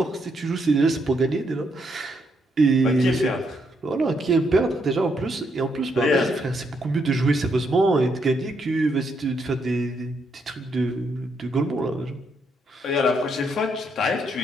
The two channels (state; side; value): normal; both; correlation 0.76